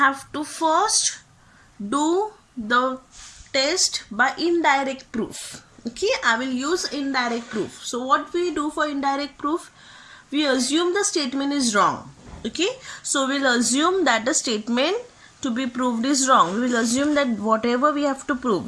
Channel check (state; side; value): identical; both; correlation 1.00